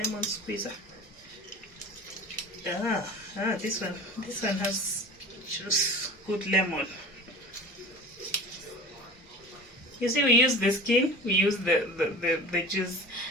squeezer? This one has juice, good lemon. You see, we use the skin, we use the juice.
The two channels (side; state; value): both; normal; correlation 0.38